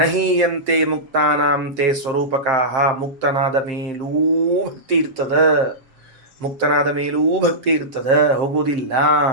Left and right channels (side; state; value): left; late; 7.6 ms